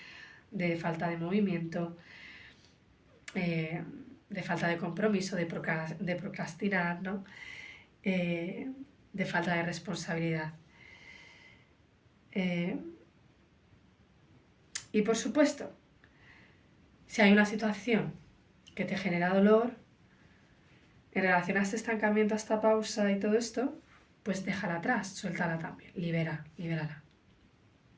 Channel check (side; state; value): both; identical; correlation 1.00